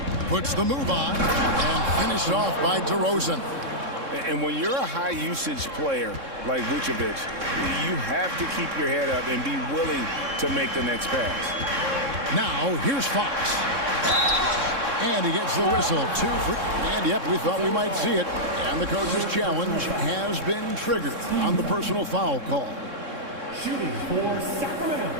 Puts the move on and finished off by DeRozan. And when you're a high-usage player like Vucevic, you have to keep your head up and be willing to make the next pass. Now, here's Fox. And he gets the whistle. 2 for... And, yep, we thought we might see it. And the coach's challenge has been triggered on the personal foul call. Shooting for Sacramento.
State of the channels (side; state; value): left; late; 3.6 ms